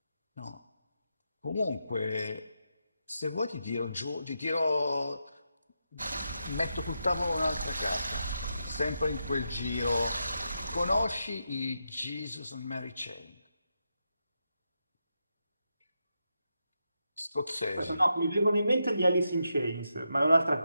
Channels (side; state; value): both; inverted; correlation -0.85